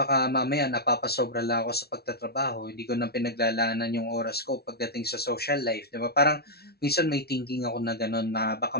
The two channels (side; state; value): right; late; 0.46 ms